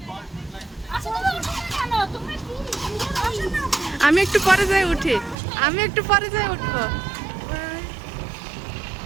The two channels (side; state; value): left; drops out; at 5.4 s